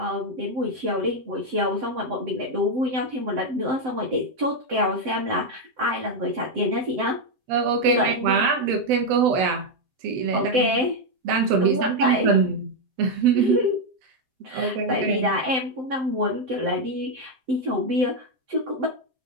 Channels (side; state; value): left; late; 7.8 ms